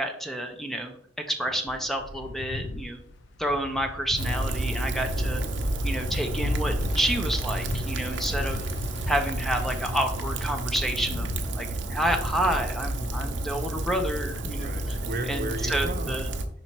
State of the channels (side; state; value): both; normal; correlation 0.72